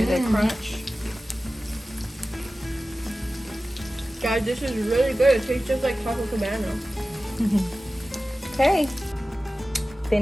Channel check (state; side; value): normal; both; correlation 0.96